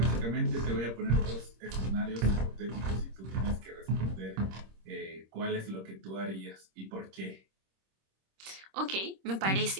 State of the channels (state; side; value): late; left; 26 ms